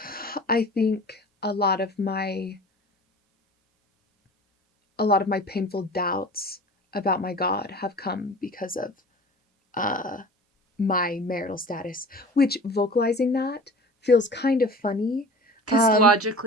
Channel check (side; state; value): both; normal; correlation 0.40